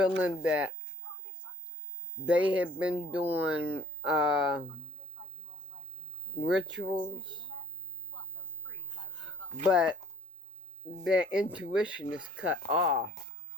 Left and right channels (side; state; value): both; normal; correlation 0.56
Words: that they have been doing rituals, but their intuition is cut off.